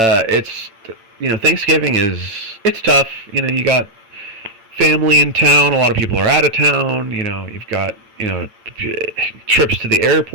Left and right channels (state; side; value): late; left; 8.9 ms